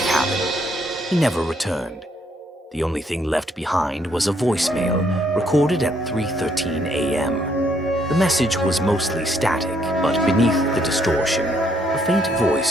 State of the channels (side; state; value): both; normal; correlation 0.70